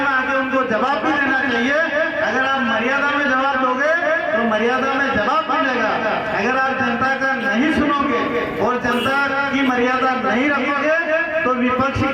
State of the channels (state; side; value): identical; both; correlation 1.00